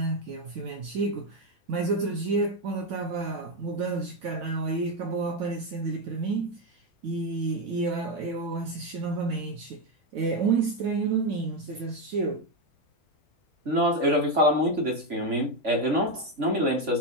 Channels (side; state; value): left; late; 3.5 ms